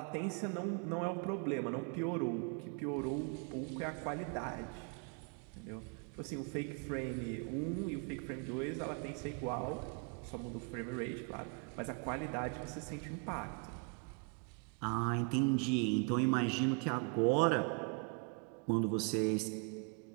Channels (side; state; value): left; quieter; 37.3 dB